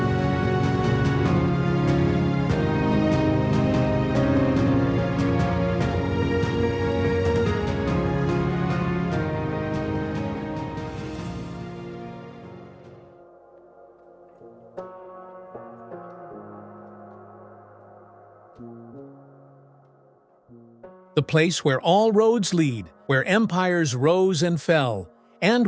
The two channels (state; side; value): identical; both; correlation 1.00